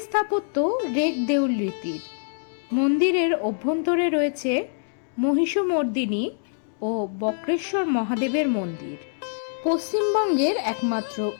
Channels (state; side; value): silent; right; 62 dB below the other